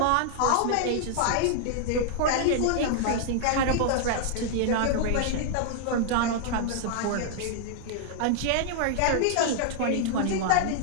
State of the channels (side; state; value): both; different; correlation -0.01